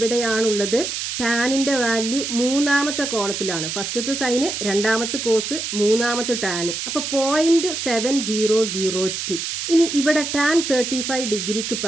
ടാനിൻ്റെ വാല്യൂ മൂന്നാമത്തെ കോളത്തിലാണ്. ഫസ്റ്റത്തെ സൈന്, രണ്ടാമത്തെ കോസ്, മൂന്നാമത്തെ ടാന്. അപ്പോൾ 0.7002. ഇനി ഇവിടെ ടാൻ 35 ഡിഗ്രിക്ക്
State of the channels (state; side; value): noise; right; hiss, 4 dB below the sound